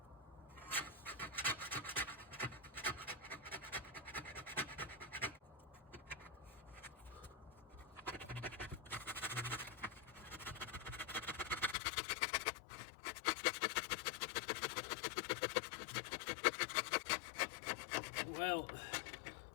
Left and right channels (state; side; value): drops out; right; at 11.8 s